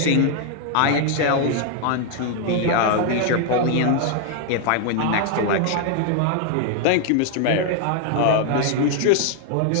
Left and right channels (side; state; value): both; different; correlation 0.00